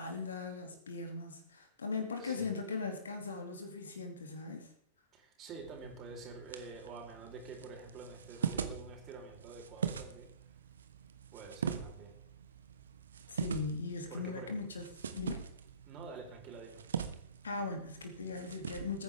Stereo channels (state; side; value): inverted; both; correlation -0.51